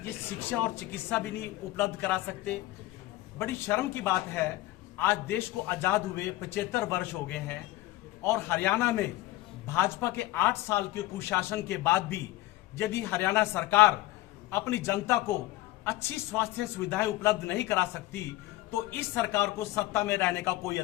ये शिक्षा और चिकित्सा भी नहीं उपलब्ध करा सकते? बड़ी शर्म की बात है, आज देश को आजाद हुए 75 वर्ष हो गए हैं और हरियाणा में भाजपा के 8 साल के कुशासन के बाद भी यदि हरियाणा सरकार अपनी जनता को अच्छी स्वास्थ्य सुविधाएं उपलब्ध नहीं करा सकती तो इस सरकार को सत्ता में रहने का कोई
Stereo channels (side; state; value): right; quieter; 17.6 dB